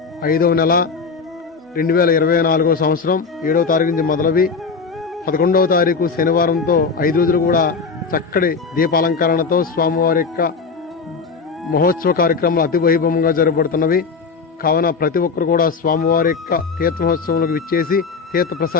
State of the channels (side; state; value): right; quieter; 5.0 dB